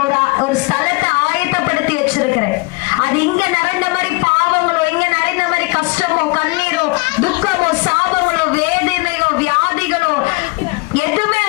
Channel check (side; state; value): right; quieter; 25.8 dB